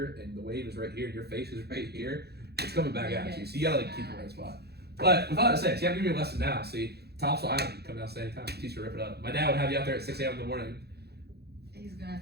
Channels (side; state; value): left; late; 0.47 ms